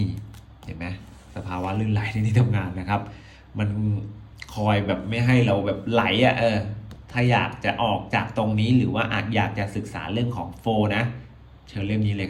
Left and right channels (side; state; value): both; identical; correlation 1.00